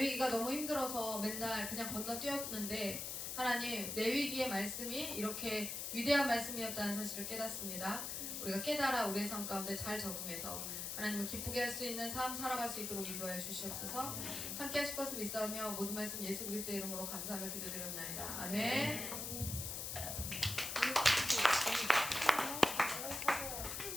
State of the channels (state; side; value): noise; left; hiss, 4 dB below the sound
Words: 너무 힘들어서 맨날 그냥 건너뛰었는데 하나님, 레위기의 말씀이 이렇게 위대한 말씀이었다는 사실을 깨닫습니다. 우리가 깨달아 우리의 삶 가운데 잘 적응해서 하나님을 기쁘게 할 수 있는 삶 살아갈 수 있도록 인도하여 주시옵소서. 함께 하실 것을 믿사오며 모든 말씀 예수 그리스도의 이름으로 감사하며 기도드리옵나이다. 아멘.